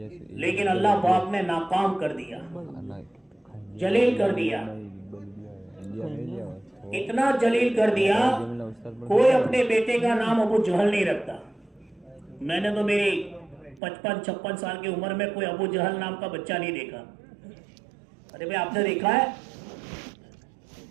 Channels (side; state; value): left; drops out; at 13.8 s